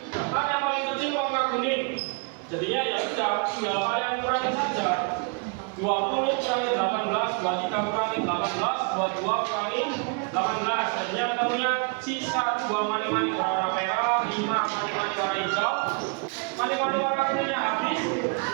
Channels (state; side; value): quieter; left; 33.8 dB